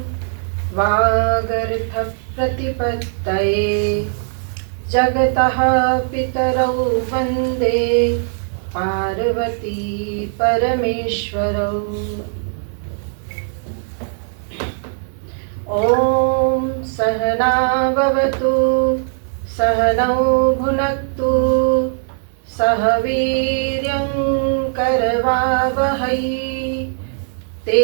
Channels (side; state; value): left; silent; 60 dB below the other